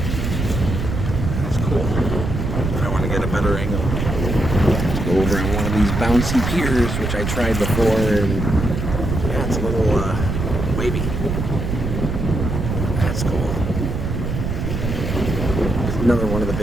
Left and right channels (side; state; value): right; noise; rumble, 2 dB below the sound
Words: Better angle. Let's go over on one of these bouncy piers, which I tried before, and yeah, it's a little wavy. That's cool. Another one of the